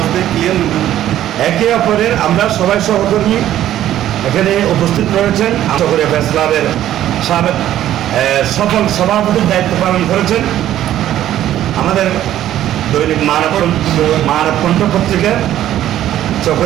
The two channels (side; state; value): left; quieter; 12.3 dB